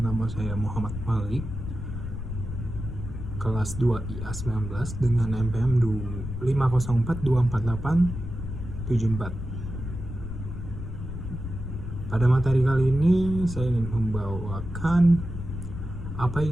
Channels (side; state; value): left; noise; rumble, 7 dB below the sound